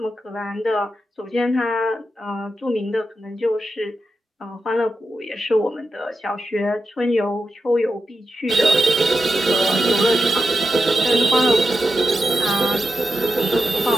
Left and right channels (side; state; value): both; normal; correlation 0.89